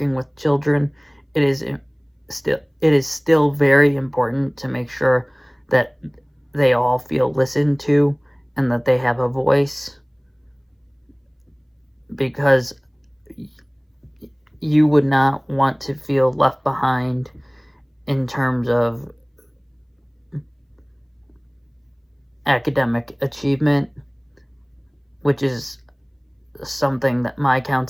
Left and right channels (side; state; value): both; identical; correlation 1.00